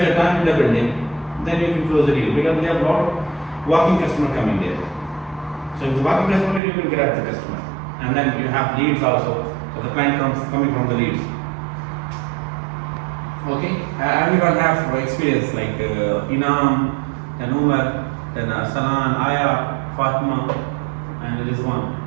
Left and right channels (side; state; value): left; drops out; at 6.6 s